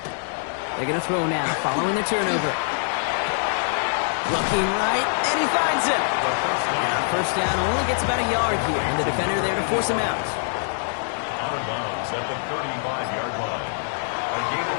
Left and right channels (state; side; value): silent; right; digital silence